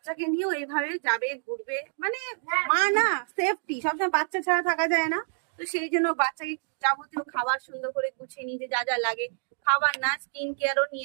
নিয়েও এইভাবে যাবে, ঘুরবে, মানে মা না, সেফটি সবসময় বাচ্চা ছাড়া থাকা যায় না। তো সেই জন্য বাচ্চাকে যাবতীয় খাবার সুন্দর করে গুছিয়ে নিতে যা যা লাগে, খাবার না স্কিন কেয়ারও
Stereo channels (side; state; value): left; silent; digital silence